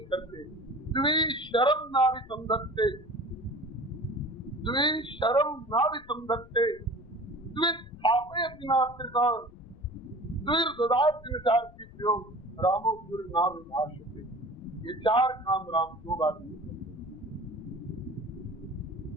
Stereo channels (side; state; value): left; noise; rumble, 21 dB below the sound